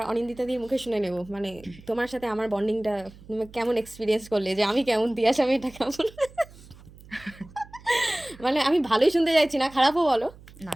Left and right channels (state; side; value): noise; right; hum, 21 dB below the sound